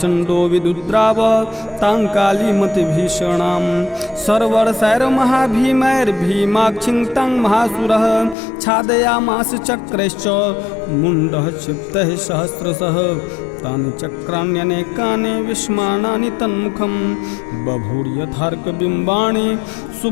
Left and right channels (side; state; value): right; drops out; at 8.3 s